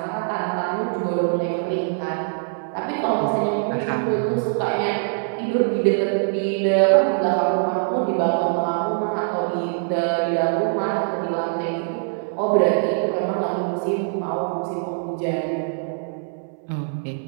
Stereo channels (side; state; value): left; silent; 63 dB below the other